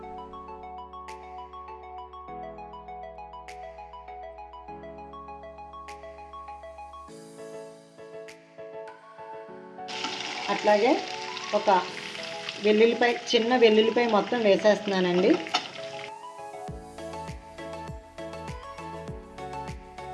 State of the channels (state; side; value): identical; both; correlation 1.00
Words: అట్లాగే ఒక వెల్లుల్లిపాయ, చిన్న వెల్లుల్లిపాయ మొత్తం వేసేస్తున్నానండి.